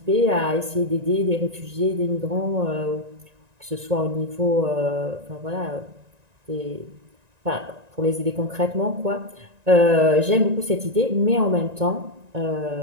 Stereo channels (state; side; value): late; left; 1.9 ms